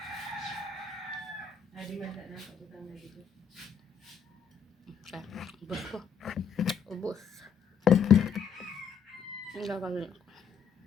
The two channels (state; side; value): quieter; right; 6.6 dB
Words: Adi man na pagkutang na dito. Ubus ko. Ubus. Ang gagawin ko.